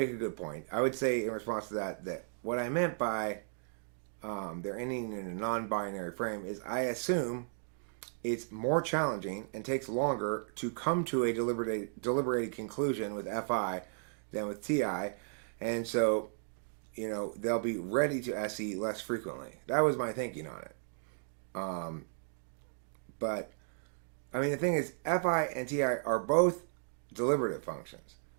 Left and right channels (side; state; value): left; silent; digital silence